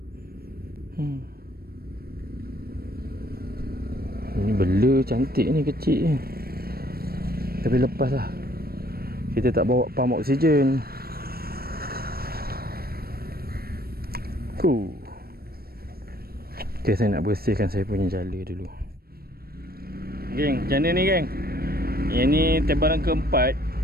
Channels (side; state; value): left; late; 0.44 ms